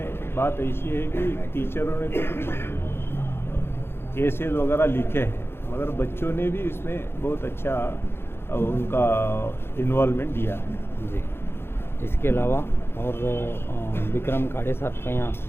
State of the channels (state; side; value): late; right; 0.11 ms